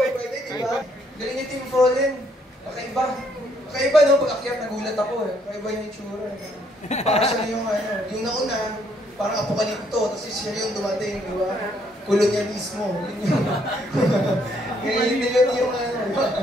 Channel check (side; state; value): both; normal; correlation 0.69